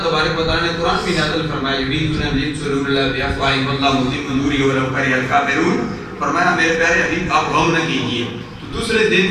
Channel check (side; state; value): both; identical; correlation 1.00